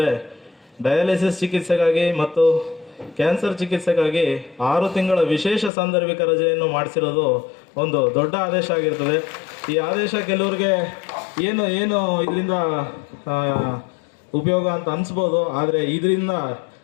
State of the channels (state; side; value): drops out; right; at 5.7 s